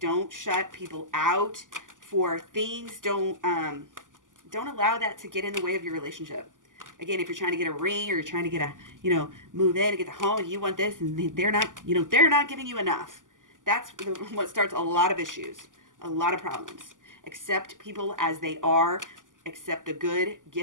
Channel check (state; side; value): late; left; 0.88 ms